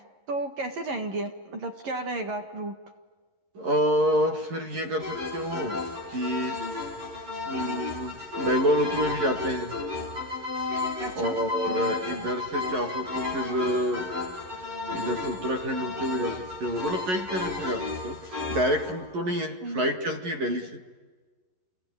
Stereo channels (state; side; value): late; left; 11 ms